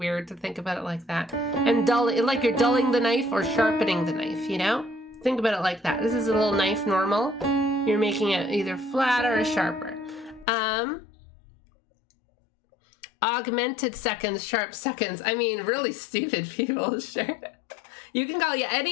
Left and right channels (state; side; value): drops out; right; at 10.5 s